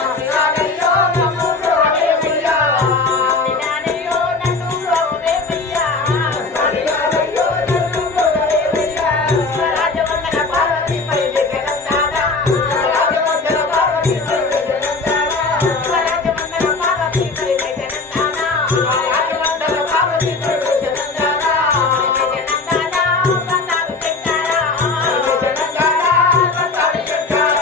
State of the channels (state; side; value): quieter; right; 3.8 dB